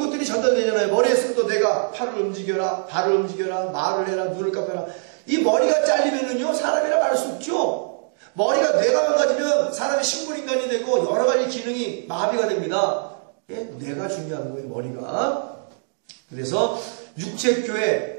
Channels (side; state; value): left; silent; digital silence